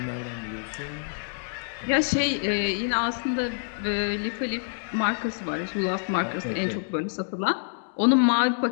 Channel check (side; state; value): right; silent; digital silence